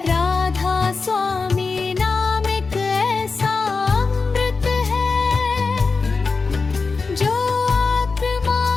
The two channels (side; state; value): right; quieter; 4.4 dB